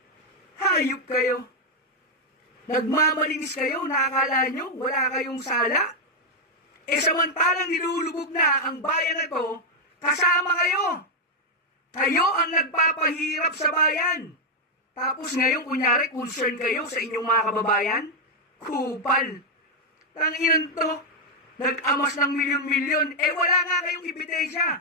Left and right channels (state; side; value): normal; both; correlation 0.01